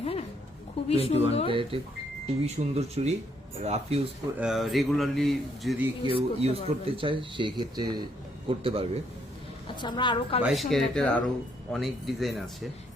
হ্যাঁ খুবই সুন্দর, খুবই সুন্দর চুড়ি। রাফ ইউজ রেগুলারলি যদি কেউ ইউজ করতে চায় সেই ক্ষেত্রে করতে পারবে। আচ্ছা, আমরা আরো 22 ক্যারেটের আরো অনেক ডিজাইন আছে।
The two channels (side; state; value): both; normal; correlation 0.71